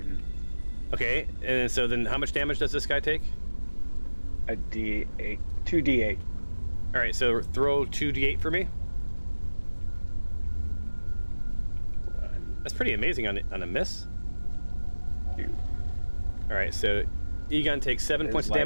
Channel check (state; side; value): inverted; both; correlation -1.00